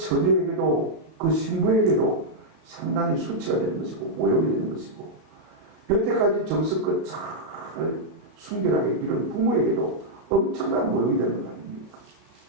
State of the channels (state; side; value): late; left; 34 ms